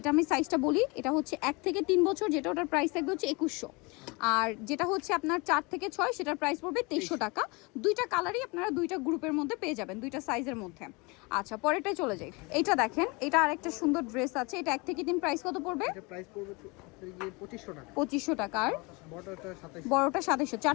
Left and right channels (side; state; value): right; quieter; 27.5 dB